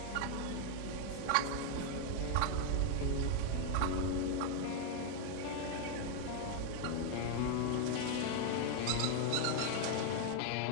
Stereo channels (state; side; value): different; both; correlation 0.00